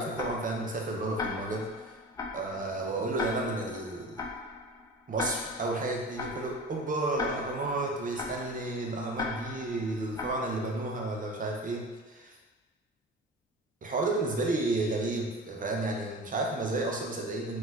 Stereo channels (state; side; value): normal; both; correlation 0.35